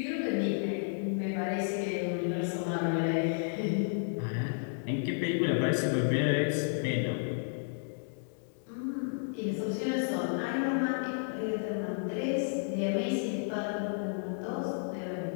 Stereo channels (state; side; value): silent; right; digital silence